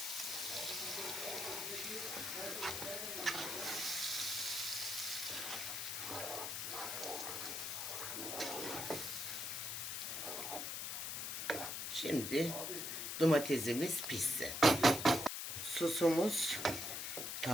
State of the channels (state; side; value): noise; left; hiss, 3 dB below the sound